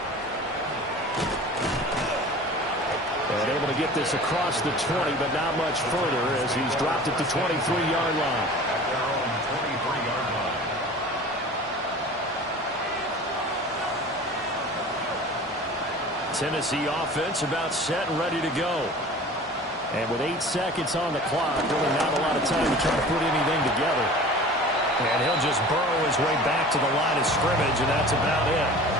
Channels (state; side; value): normal; both; correlation 0.41